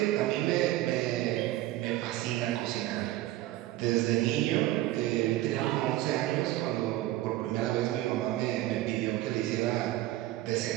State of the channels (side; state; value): left; quieter; 15.7 dB